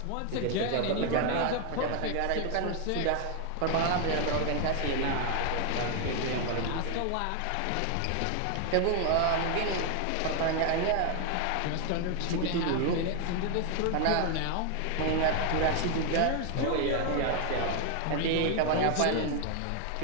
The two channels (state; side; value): different; both; correlation 0.01